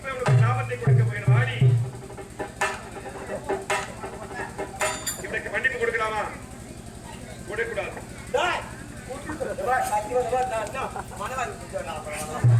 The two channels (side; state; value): both; identical; correlation 1.00